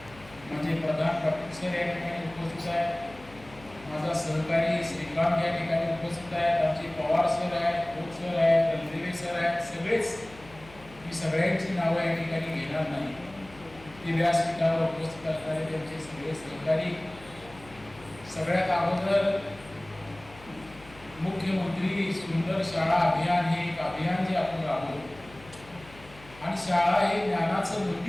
माझे प्रधान पाटील सर या ठिकाणी उपस्थित आहेत, माझा सहकारी श्रीकांत या ठिकाणी उपस्थित आहेत, आमचे पवार सर आहेत, खोत सर आहेत, रणदिवे सर आहेत. सगळेच मी सगळ्यांची नावं या ठिकाणी घेणार नाही. ते व्यासपीठावर उपस्थित असणारे त्यांचे सगळे सहकारी. सगळ्यात अगोदर मुख्यमंत्री सुंदर शाळा अभियान हे एक अभियान जे आपण राबवतो आणि शाळा हे ज्ञानाचं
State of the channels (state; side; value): noise; left; hum, 21 dB below the sound